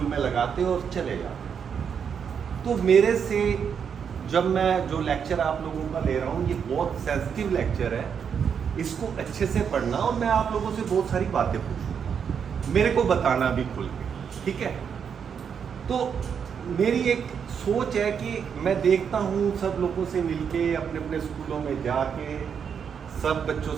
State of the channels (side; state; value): left; quieter; 7.2 dB